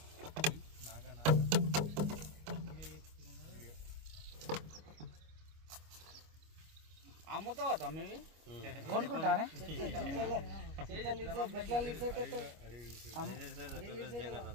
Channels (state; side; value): late; left; 25 ms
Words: అమ్ముతావా తమ్మి కొనుక్కుంటారా